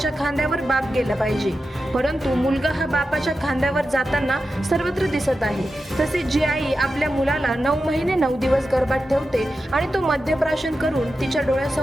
खांद्यावर बाप गेला पाहिजे, परंतु मुलगा हा बापाच्या खांद्यावर जाताना सर्वत्र दिसत आहे। तसेच जी आई आपल्या मुलाला 9 महिने 9 दिवस गर्भात ठेवते आणि तो मद्यप्राशन करून तिच्या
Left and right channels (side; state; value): both; normal; correlation 0.91